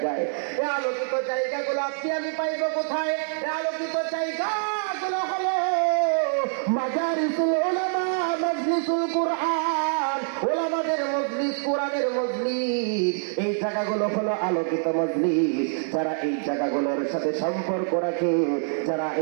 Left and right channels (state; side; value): silent; left; digital silence